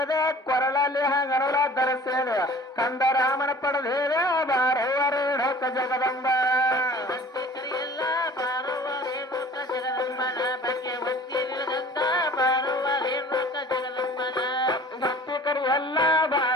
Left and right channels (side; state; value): both; normal; correlation 0.46